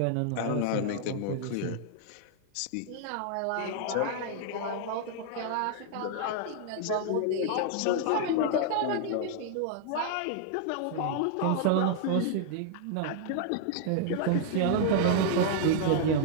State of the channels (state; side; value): different; both; correlation -0.01